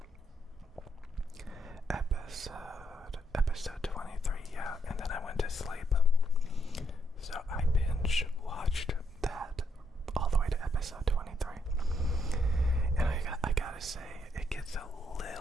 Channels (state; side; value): normal; both; correlation 0.75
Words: Episode 23, yeah, and then I went to sleep. So I binge watched that all the way to episode 23. And I gotta say, it gets a